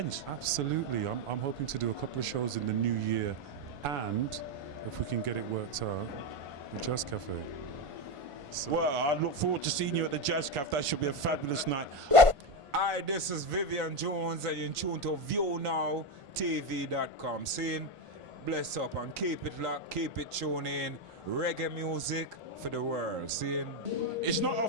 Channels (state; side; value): late; left; 1.5 ms